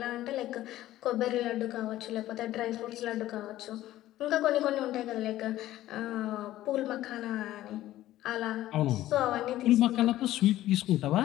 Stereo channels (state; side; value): quieter; right; 14.5 dB